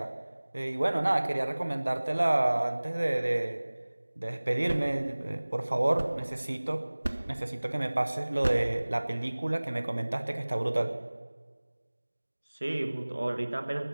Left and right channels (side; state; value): both; inverted; correlation -1.00